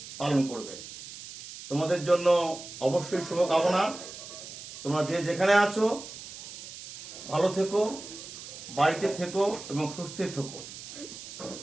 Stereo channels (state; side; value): noise; right; hiss, 13 dB below the sound